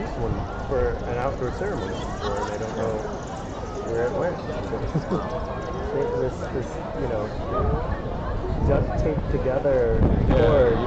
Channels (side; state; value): both; identical; correlation 1.00